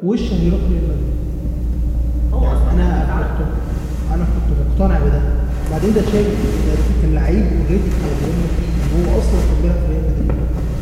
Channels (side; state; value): both; identical; correlation 1.00